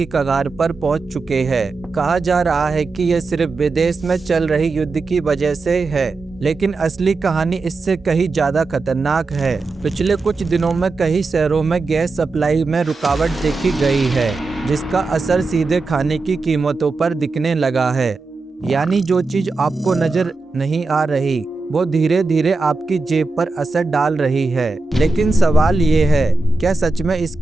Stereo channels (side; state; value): left; quieter; 3.7 dB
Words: कगार पर पहुंच चुके हैं। कहा जा रहा है कि यह सिर्फ विदेश में चल रही युद्ध की वजह से है, लेकिन असली कहानी इससे कहीं ज्यादा खतरनाक है। पिछले कुछ दिनों में कई शहरों में गैस सप्लाई में रुकावट देखी गई है, जिसका असर सीधे खाने की कीमतों पर दिखने लगा है। यानी जो चीज आपको नजर नहीं आ रही, वो धीरे धीरे आपकी जेब पर असर डाल रही है। लेकिन सवाल ये है, क्या सच में